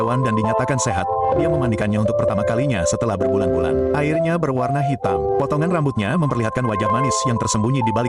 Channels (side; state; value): both; identical; correlation 1.00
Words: dan dinyatakan sehat, dia memandikannya untuk pertama kalinya setelah berbulan-bulan. Airnya berwarna hitam. Potongan rambutnya memperlihatkan wajah manis yang tersembunyi di